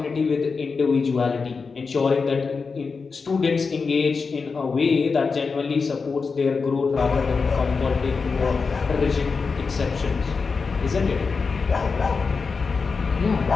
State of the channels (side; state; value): right; quieter; 4.8 dB